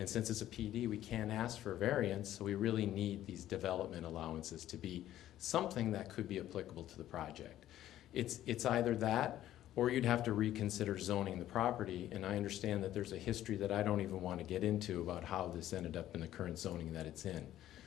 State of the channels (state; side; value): quieter; right; 12.9 dB